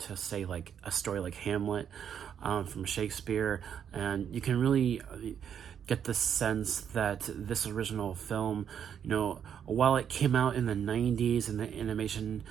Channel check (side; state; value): left; quieter; 8.4 dB